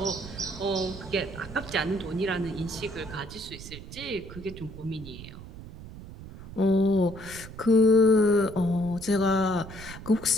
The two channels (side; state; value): right; noise; rumble, 14 dB below the sound